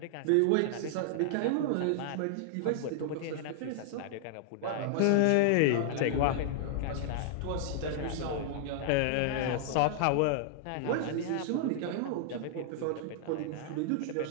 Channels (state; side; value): different; both; correlation -0.01